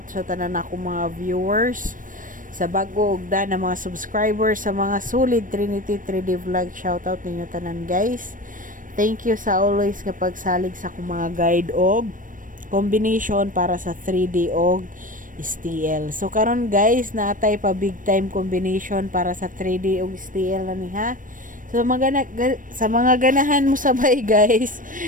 sa tanan ako mga viewers, sa bago ug na mga subscribers, sa mga solid Trinity 3D Vlog. Shout out ninyo tanan guys. Thank you sa always nga pagsalig sa akong mga guide og combination para sa 3D og STL. So karon guys, naatay pa big time combination para sa 3D ug STL na ni ha. So sa mga ganahan mo sabay guys,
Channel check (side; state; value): left; late; 0.38 ms